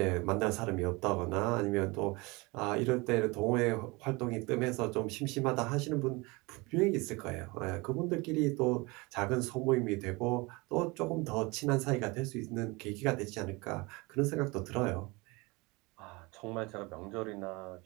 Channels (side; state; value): left; quieter; 25.2 dB